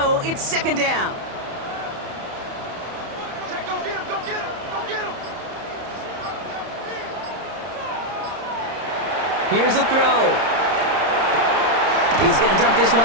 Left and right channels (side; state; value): left; late; 31 ms